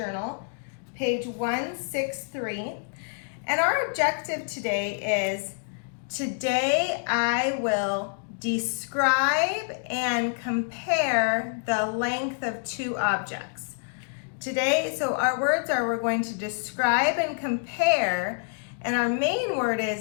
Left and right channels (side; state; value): right; silent; digital silence